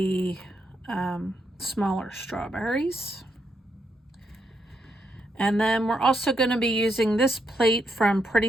smaller strawberries. And then we're also going to be using this plate from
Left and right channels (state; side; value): normal; both; correlation 0.80